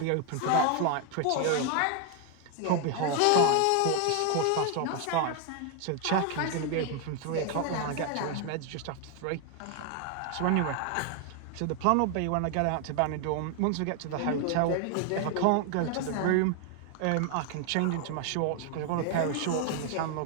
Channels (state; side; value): different; both; correlation 0.01